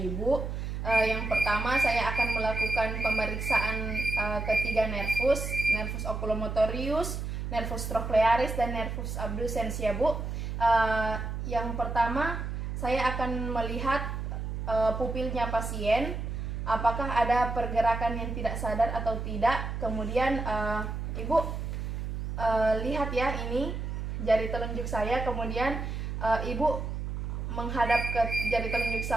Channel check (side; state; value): right; noise; hum, 4 dB below the sound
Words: Yang pertama, saya akan melakukan pemeriksaan ketiga nervus oculomotorius, nervus trochlearis, dan nervus abducens ya Bu. Yang pertama, saya akan melihat pupilnya pasien. Apakah ada pergerakan yang tidak sadar atau tidak. Kemudian Ibu lihat ya, ini jari telunjuk saya. Kemudian Ibu menghadap ke jari telunjuk